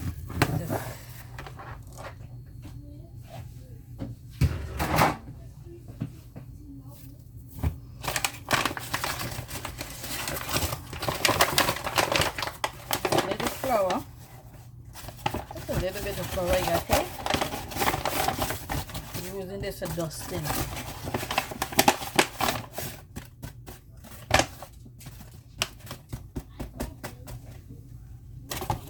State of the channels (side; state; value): both; identical; correlation 1.00